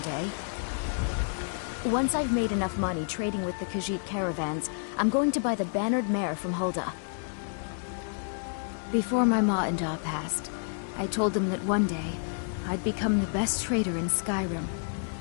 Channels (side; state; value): right; silent; digital silence